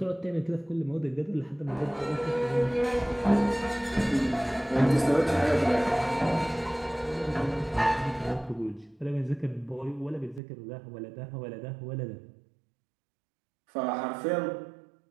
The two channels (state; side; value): drops out; left; at 10.4 s